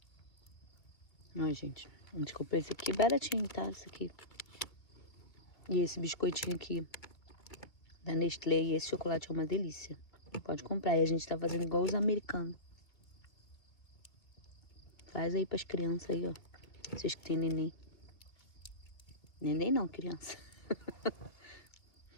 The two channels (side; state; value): right; late; 2.1 ms